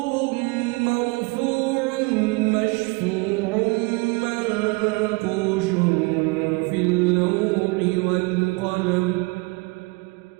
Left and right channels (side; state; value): left; quieter; 27.2 dB